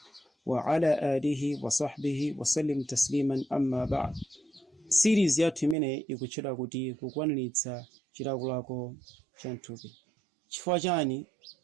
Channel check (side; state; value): left; drops out; at 5.8 s